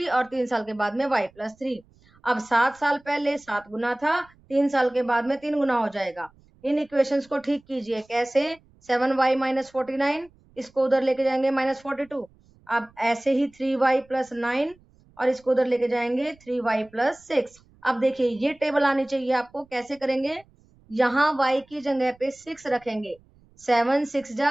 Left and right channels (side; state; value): right; noise; rumble, 30 dB below the sound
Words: और 3 साल के बाद में y प्लस 3। अब 7 साल पहले 7 गुना था, 3 साल के बाद में 3 गुना हो जाएगा। इन इक्वेशंस को ठीक कीजिए। कैसे? 7y माइनस 49, इसको उधर लेके जाएंगे -42। अब ऐसे ही 3y प्लस 9 और इसको उधर लेके जाएंगे 3y प्लस 6। अब देखिए ये टेबल आनी चाहिए आपको। कैसे करेंगे? यहाँ y की जगह पे 6 रखेंगे। 7 6